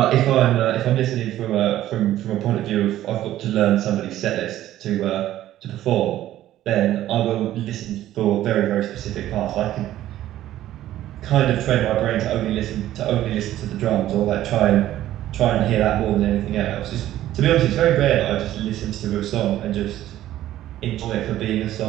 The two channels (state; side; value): quieter; left; 13.4 dB